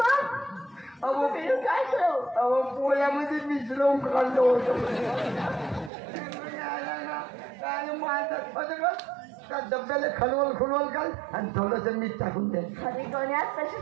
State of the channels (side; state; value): left; drops out; at 5.9 s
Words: अहो काय करू? अहो पोळ्यामध्ये मिसळून काढलं होतं काय मारतात त्या डब्याला खलवल घाल आणि थोडस मीठ टाकून दे. अरे गण्यात तशी